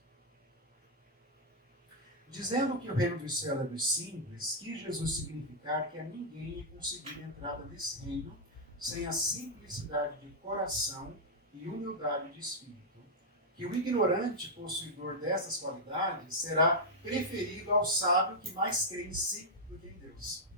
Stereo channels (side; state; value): both; normal; correlation -0.04